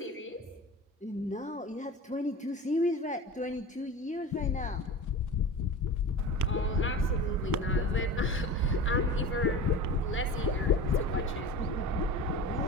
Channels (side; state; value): both; normal; correlation 0.33